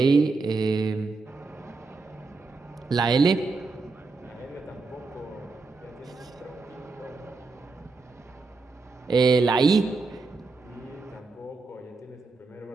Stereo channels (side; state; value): left; quieter; 4.0 dB